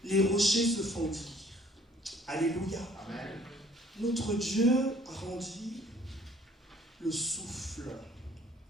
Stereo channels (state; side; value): normal; both; correlation 0.58